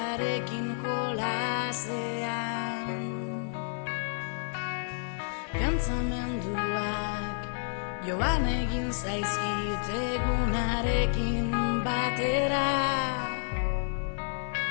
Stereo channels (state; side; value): silent; right; 58 dB below the other